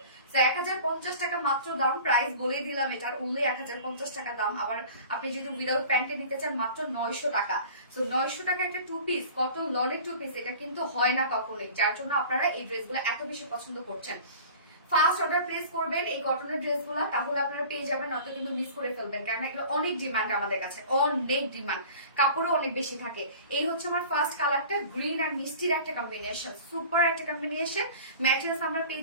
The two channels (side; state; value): both; inverted; correlation -0.42